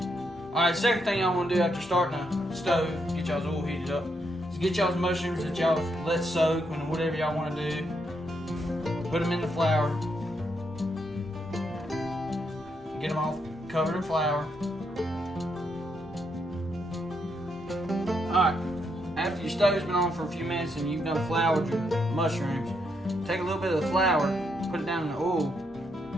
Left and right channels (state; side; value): normal; both; correlation 0.78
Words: Alright, second thing y'all want to do after starting the stove, get y'all's oil heated up, is get y'all's mushrooms that y'all let soak and whatever y'all want to do. Put them in the flour. Get them all covered in flour. Alright, after your stove's been on for a few minutes and you've done floured your mushrooms, take a little bit of the flour, put it down in the oil,